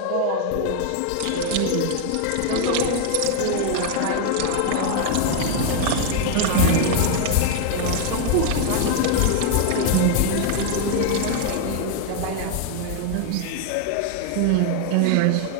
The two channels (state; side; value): different; both; correlation 0.00